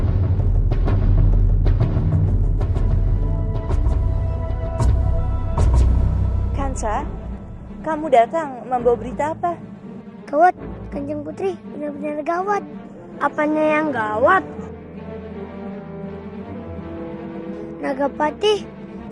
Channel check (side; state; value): both; identical; correlation 1.00